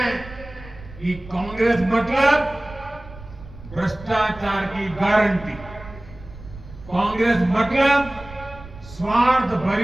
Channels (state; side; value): noise; right; rumble, 17 dB below the sound